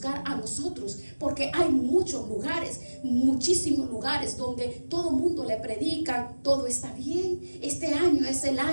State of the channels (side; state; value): both; inverted; correlation -1.00